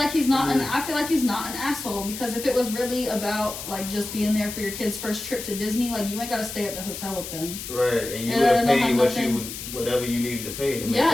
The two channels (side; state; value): left; noise; hiss, 9 dB below the sound